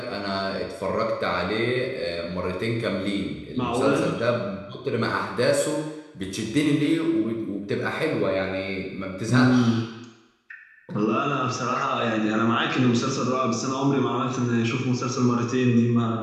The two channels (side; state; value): both; identical; correlation 1.00